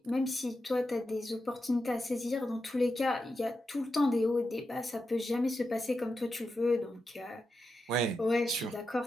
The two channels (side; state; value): both; normal; correlation 0.88